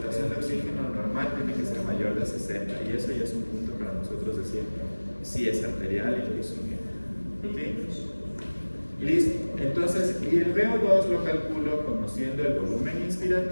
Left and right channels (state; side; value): inverted; both; correlation -1.00